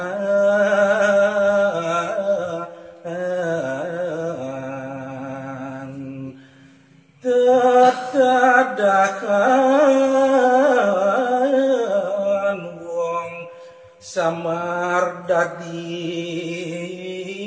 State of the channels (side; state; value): both; identical; correlation 1.00